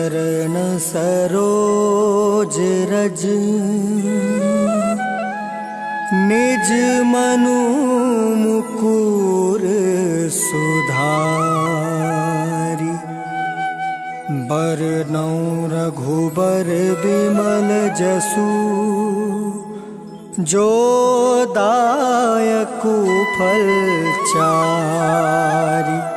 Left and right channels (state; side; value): identical; both; correlation 1.00